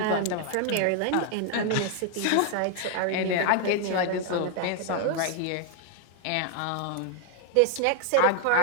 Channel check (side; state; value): both; different; correlation 0.00